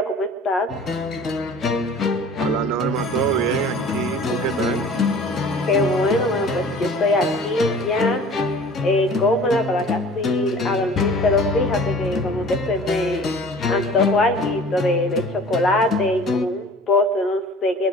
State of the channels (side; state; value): both; normal; correlation 0.46